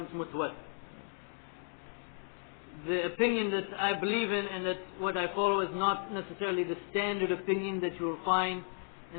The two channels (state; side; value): silent; right; 55 dB below the other